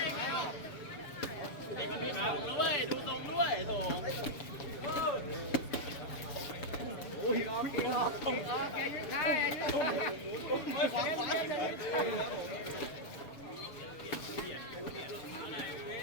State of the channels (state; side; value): late; right; 7.0 ms